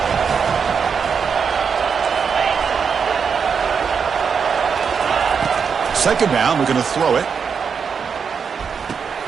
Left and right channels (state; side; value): quieter; left; 6.3 dB